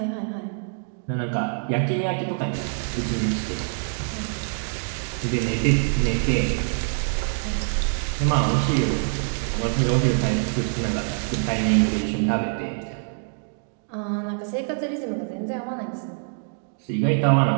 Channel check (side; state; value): left; silent; 62 dB below the other